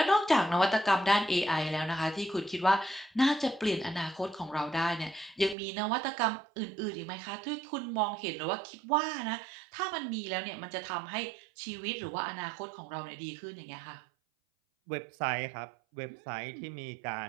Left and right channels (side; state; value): left; drops out; at 5.6 s